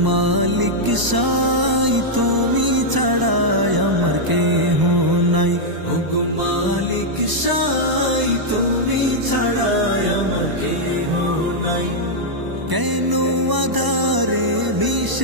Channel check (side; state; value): left; late; 1.0 ms